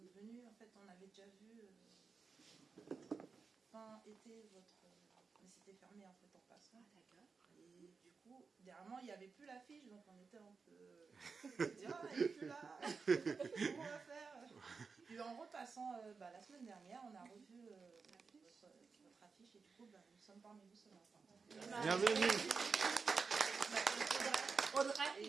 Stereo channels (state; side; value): quieter; left; 4.9 dB